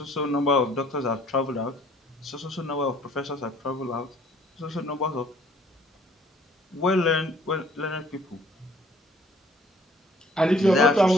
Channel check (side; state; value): both; normal; correlation 0.59